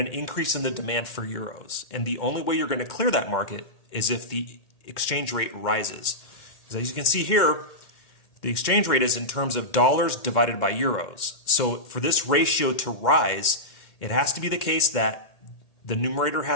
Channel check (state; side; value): late; right; 2.1 ms